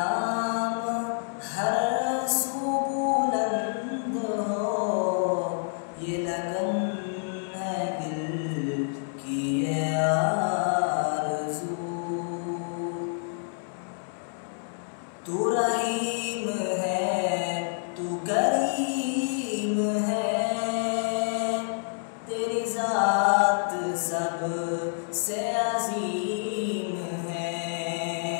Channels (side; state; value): right; silent; 59 dB below the other